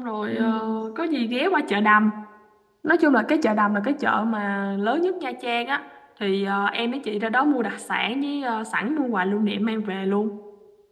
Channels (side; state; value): both; identical; correlation 1.00